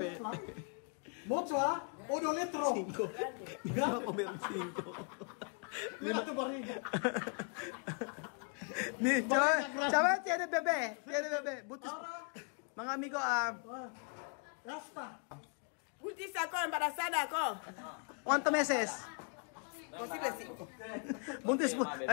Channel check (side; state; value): right; quieter; 39.0 dB